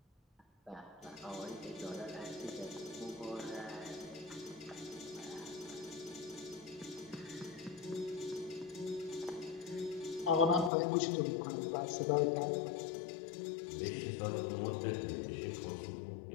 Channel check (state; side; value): drops out; right; at 10.7 s